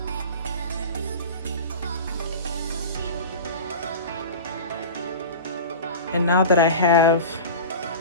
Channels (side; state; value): both; inverted; correlation -0.31